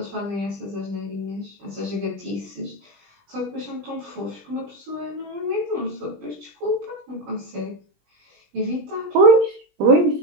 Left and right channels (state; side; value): late; left; 20 ms